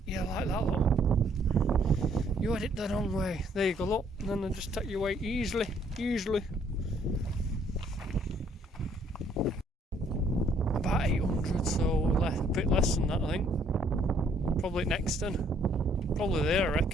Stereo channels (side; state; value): both; normal; correlation 0.65